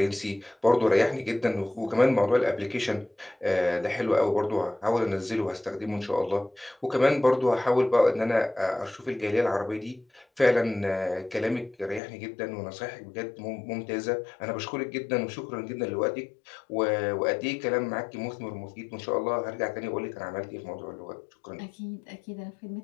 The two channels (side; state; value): right; drops out; at 12.0 s